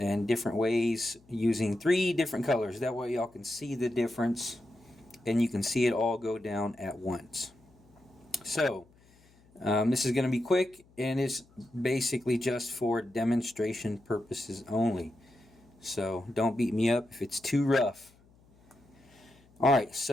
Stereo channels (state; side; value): noise; left; hum, 29 dB below the sound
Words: different ways using three different colors. That way y'all can see the difference and you can see it all go down at once. So this is going to be quick, and it's basically just for demonstration purposes only. So don't beat me up if it's too rough. Alright,